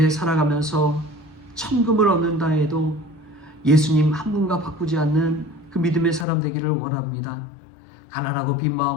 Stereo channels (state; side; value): drops out; right; at 6.2 s